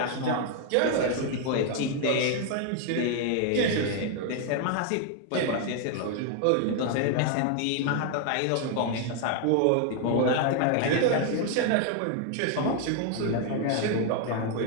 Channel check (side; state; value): both; different; correlation 0.00